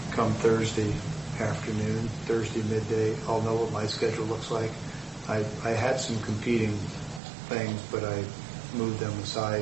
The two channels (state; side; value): drops out; left; at 7.2 s